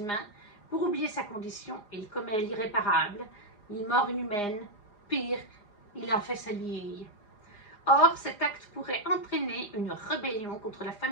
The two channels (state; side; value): late; right; 4.9 ms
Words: pour oublier sa condition, il commet l'irréparable. Il mord une humaine. Pire, il en fait sa liée. Or, cet acte pourrait entraîner une rébellion contre la